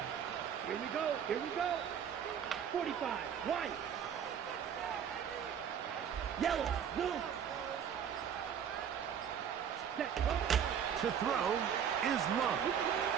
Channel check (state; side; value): quieter; left; 8.2 dB